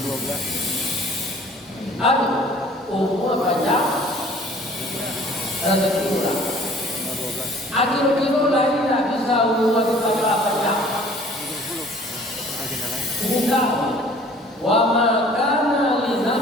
Aduh, umur banyak rezeki murah. Akhir kilo lagi tidak bisa umur kita banyak. Bukan. Wa ma kana li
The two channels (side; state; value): both; normal; correlation 0.51